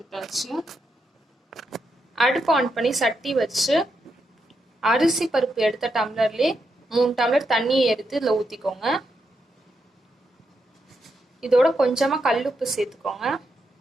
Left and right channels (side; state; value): both; normal; correlation 0.83